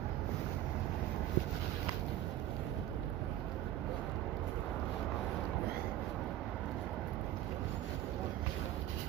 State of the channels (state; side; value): quieter; left; 13.0 dB